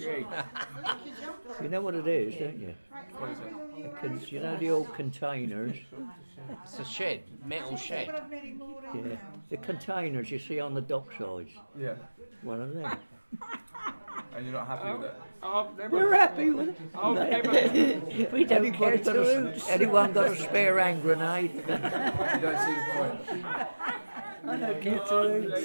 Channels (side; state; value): both; inverted; correlation -1.00